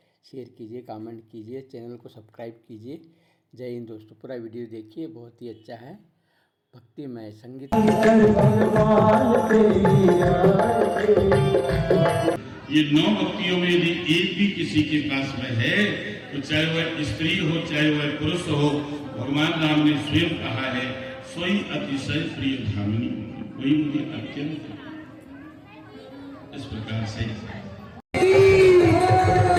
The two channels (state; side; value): identical; both; correlation 1.00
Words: शेयर कीजिए, कमेंट कीजिए, चैनल को सब्सक्राइब कीजिए। जय हिंद दोस्तों, पूरा वीडियो देखिए, बहुत ही अच्छा है, भक्तिमय संगीत। ये 9 भक्तियों में यदि एक भी किसी के पास में है तो चाहे वह स्त्री हो चाहे वह पुरुष हो, भगवान राम ने स्वयं कहा है, सोई अतिशय प्रिय धामिनी, वही मुझे अत्यंत इस प्रकार से